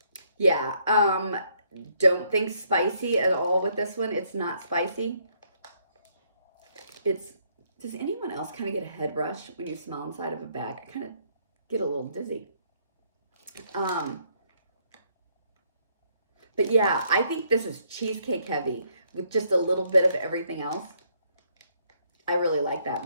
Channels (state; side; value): inverted; both; correlation -0.70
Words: Yeah, don't think spicy at all with this one. It's not spicy. Does anyone else kind of get a head rush when you smell inside of a bag? I kind of get a little dizzy. But yeah, I think this is cheesecake heavy with just a little bit of everything else. I really like that,